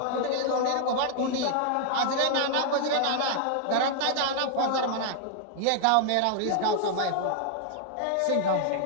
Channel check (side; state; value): both; different; correlation 0.00